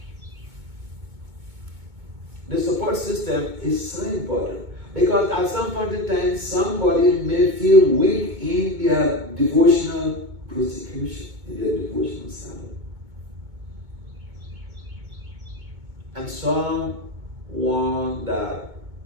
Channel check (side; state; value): left; late; 2.2 ms